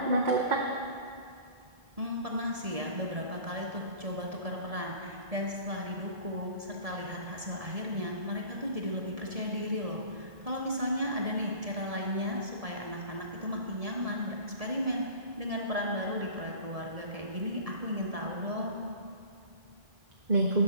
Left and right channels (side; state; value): left; late; 1.7 ms